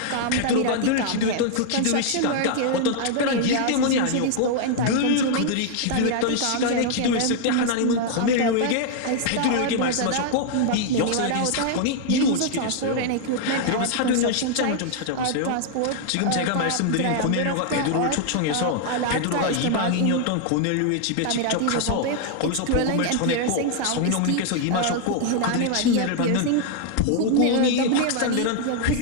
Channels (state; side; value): different; both; correlation 0.00